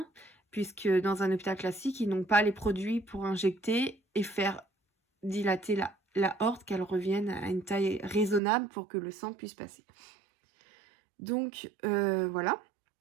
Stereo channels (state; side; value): drops out; left; at 8.4 s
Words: puisque dans un hôpital classique, ils n'ont pas les produits pour injecter et faire dilater la aorte, qu'elle revienne à une taille raisonnable pour que le sang puisse passer. Donc voilà.